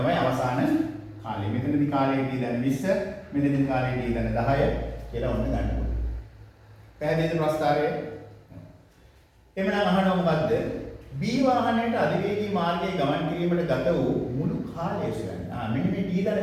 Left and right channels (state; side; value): identical; both; correlation 1.00